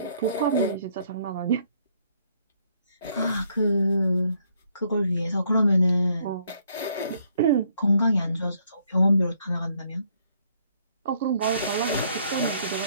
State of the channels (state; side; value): inverted; both; correlation -0.68